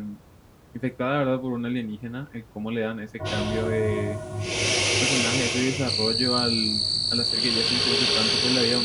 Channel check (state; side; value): identical; both; correlation 1.00